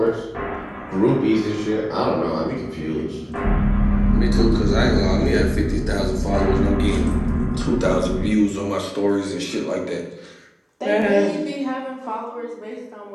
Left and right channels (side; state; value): both; identical; correlation 1.00